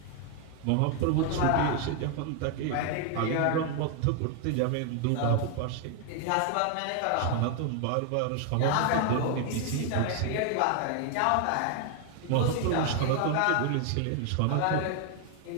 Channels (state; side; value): different; both; correlation 0.00